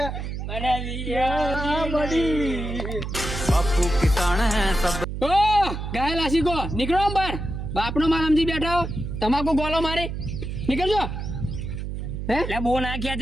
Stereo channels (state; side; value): noise; right; hum, 5 dB below the sound